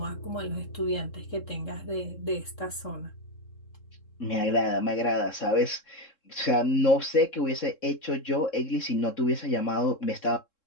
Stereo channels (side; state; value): right; late; 3.7 ms